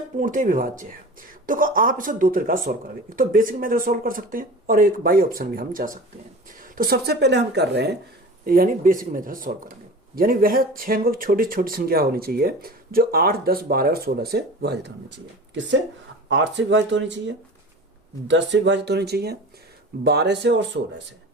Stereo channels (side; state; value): both; normal; correlation 0.36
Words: विभाज्य है। देखो, आप इसे दो तरीका से सोल्व करेंगे। एक तो बेसिक मेथड सोल्व कर सकते हैं और एक बाई ऑप्शन भी हम जा सकते हैं। तो सबसे पहले हम कर रहे हैं यानी बेसिक मेथड सोल्व करेंगे। यानी वह 6 अंकों की छोटी छोटी संख्या होनी चाहिए जो 8, 10, 12 और 16 से विभाजित होनी चाहिए। किससे? 8 से विभाजित होनी चाहिए, 10 से विभाजित होनी चाहिए, 12 से और 16 से,